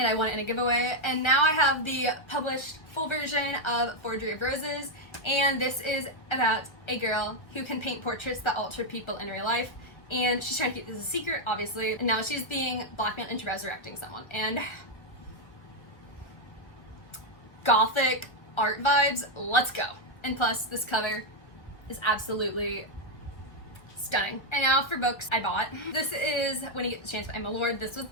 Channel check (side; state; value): right; late; 1.5 ms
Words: I won it in a giveaway, and now I have the published full version of Forgery of Roses. And this is about a girl who can paint portraits that alter people in real life. And she's trying to keep this a secret, obviously. And now she's being blackmailed into resurrecting someone. And gothic art vibes, let's go. And plus, this cover is absolutely stunning. And now for books I bought. This is When You Get the Chance by Emma Lord. This was